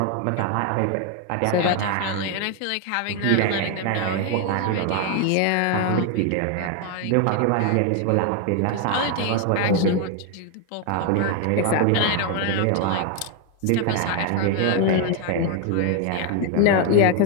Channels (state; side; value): different; both; correlation 0.01